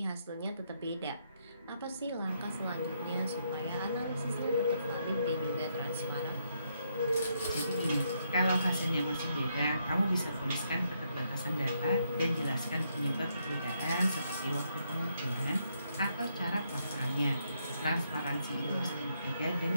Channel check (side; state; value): both; inverted; correlation -0.77